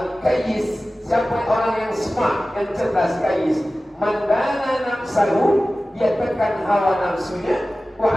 siapa orang yang smart, yang cerdas Qayyis? Mandana nafsahu, dia tekan hawa nafsunya, wa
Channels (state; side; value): normal; both; correlation 0.96